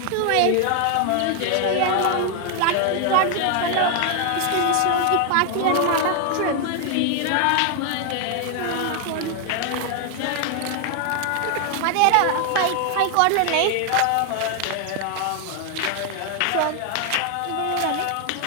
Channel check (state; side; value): different; both; correlation 0.00